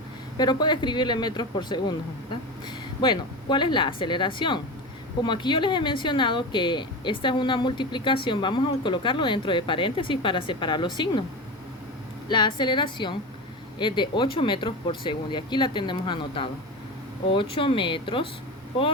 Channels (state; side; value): normal; both; correlation 0.25